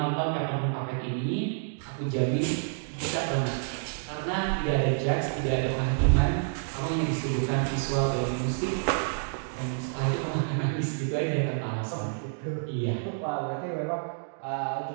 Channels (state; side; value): silent; left; digital silence